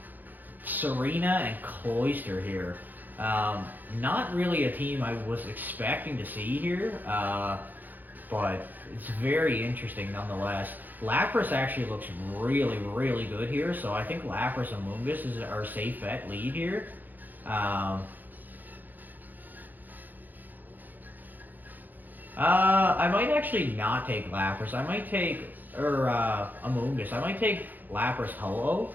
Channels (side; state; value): left; late; 0.086 ms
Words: Serena, and Cloyster here. Not really a team I was expecting to see here, but it's very interesting nonetheless. Lapras actually looks really good here, so I think Lapras and Amoonguss is our safe bet lead here. I might actually not take Lapras. I might take, Amoonguss. I might take Lapras Ho-Oh.